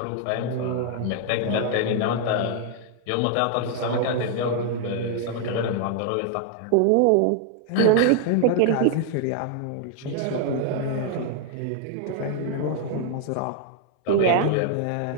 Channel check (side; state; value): both; different; correlation 0.00